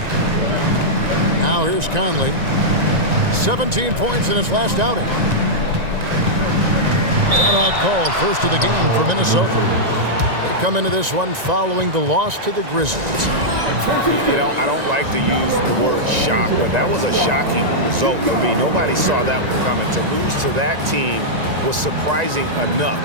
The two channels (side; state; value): left; late; 1.9 ms